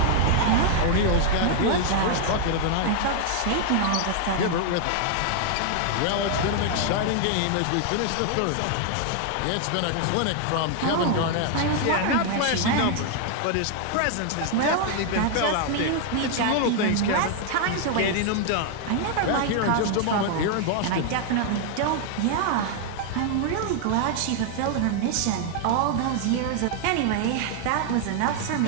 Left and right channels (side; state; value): both; different; correlation 0.00